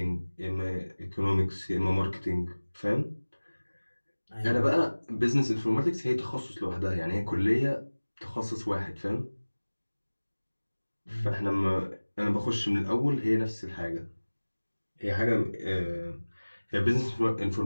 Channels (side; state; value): both; inverted; correlation -1.00